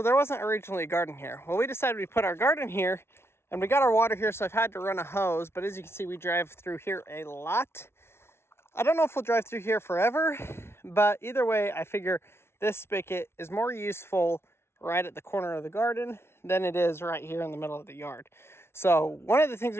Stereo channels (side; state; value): right; late; 0.12 ms